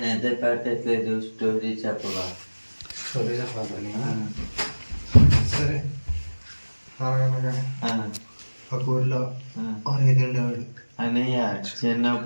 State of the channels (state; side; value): inverted; both; correlation -1.00